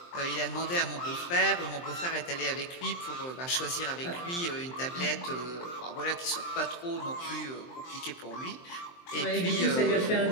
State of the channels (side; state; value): right; late; 23 ms